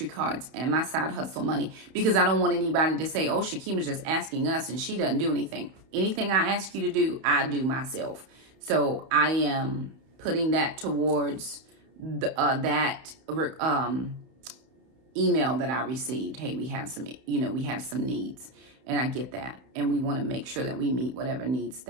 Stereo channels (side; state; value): left; late; 31 ms